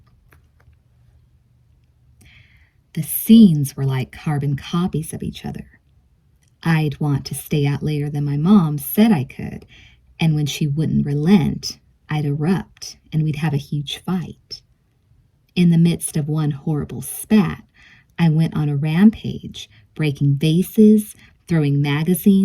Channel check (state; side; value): identical; both; correlation 1.00